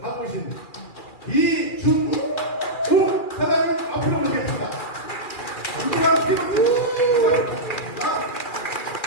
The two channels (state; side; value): late; right; 2.4 ms